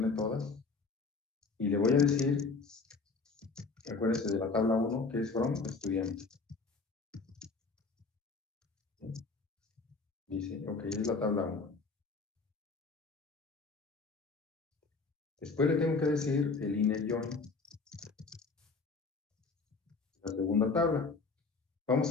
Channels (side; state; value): right; quieter; 4.3 dB